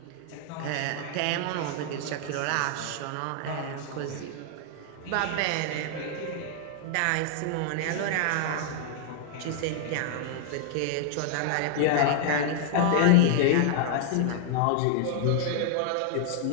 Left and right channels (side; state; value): both; different; correlation -0.01